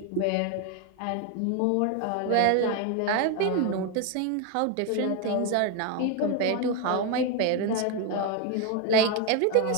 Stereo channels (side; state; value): both; different; correlation 0.01